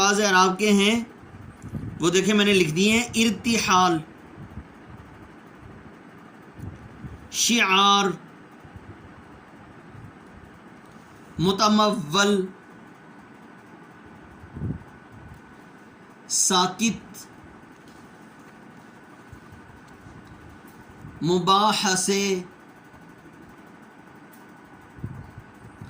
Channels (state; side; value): identical; both; correlation 1.00